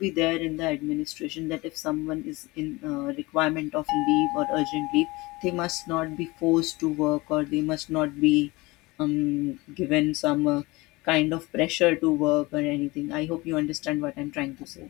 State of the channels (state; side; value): quieter; right; 22.6 dB